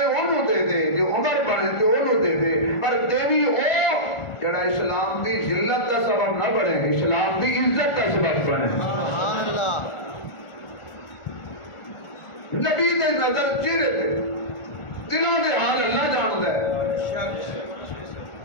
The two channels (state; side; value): late; right; 1.4 ms